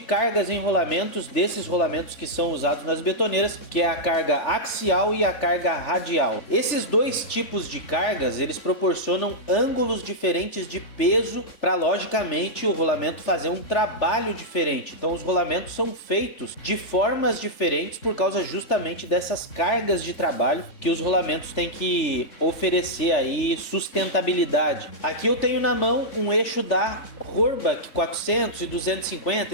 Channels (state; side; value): late; right; 3.4 ms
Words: em rolamentos desses rolamentos que são usados nas betoneiras, que é a carga axial e a carga radial. Esses dois tipos de cargas, eles proporcionam ângulos diferentes de peso para, logicamente, o rolamento fazer um trabalho diferente. Então os rolamentos são feitos de formas diferentes por causa justamente dessas cargas de trabalho que os rolamentos têm que oferecer aí sustentabilidade. Aqui eu tenho na mão um eixo da Rohrbach 400 e 250